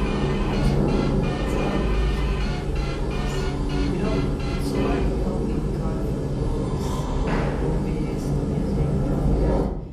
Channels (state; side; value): identical; both; correlation 1.00